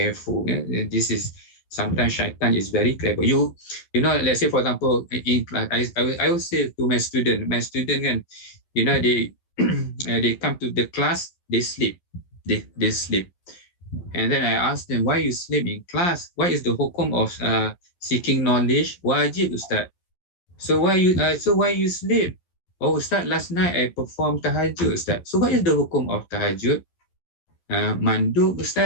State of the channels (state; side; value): late; right; 11 ms